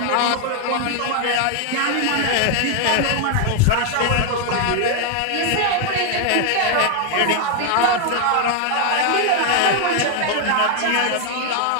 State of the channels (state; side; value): different; both; correlation 0.00